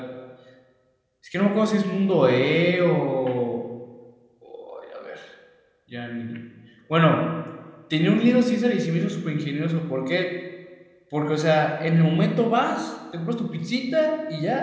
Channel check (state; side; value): identical; both; correlation 1.00